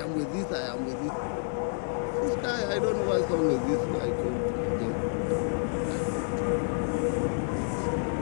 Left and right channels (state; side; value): silent; right; digital silence